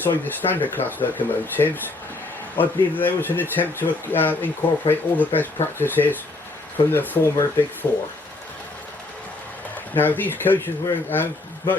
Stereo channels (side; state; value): right; quieter; 3.1 dB